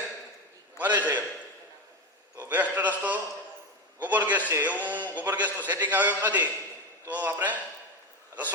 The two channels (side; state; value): both; normal; correlation 0.17